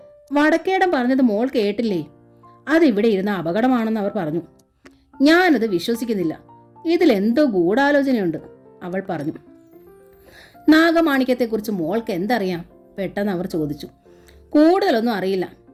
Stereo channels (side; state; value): both; identical; correlation 1.00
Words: വടക്കേടം പറഞ്ഞത് മോൾ കേട്ടില്ലേ? അതിവിടെ ഇരുന്ന അപകടമാണെന്ന് അവർ പറഞ്ഞു. ഞാനത് വിശ്വസിക്കുന്നില്ല. ഇതിലെന്തോ ഗൂഢാലോചനയുണ്ട്, അവൾ പറഞ്ഞു. നാഗമാണിക്യത്തെക്കുറിച്ച് മോൾക്ക് എന്തറിയാം? പെട്ടെന്ന് അവർ ചോദിച്ചു. കൂടുതലൊന്നും അറിയില്ല.